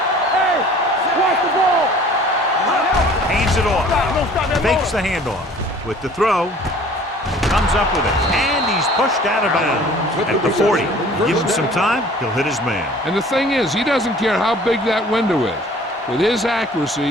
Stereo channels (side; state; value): both; normal; correlation 0.50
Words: Hey, watch the ball. Hands it off. Don't stop that Fakes the handoff. With the throw. Comes up with it. And he's pushed out of bounds at the 40. Give him some time, he'll hit his man. And the thing is, he doesn't care how big that window is. With his